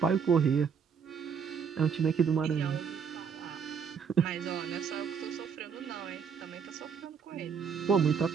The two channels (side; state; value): left; quieter; 6.6 dB